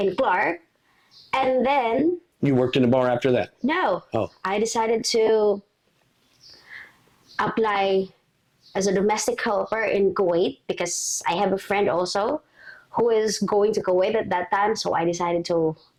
Clark, and then You worked in a bar after that. no, Oh. I decided to apply as a domestic helper in Kuwait because I have a friend also who is going to Kuwait at that time. So I decided to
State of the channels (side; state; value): both; identical; correlation 1.00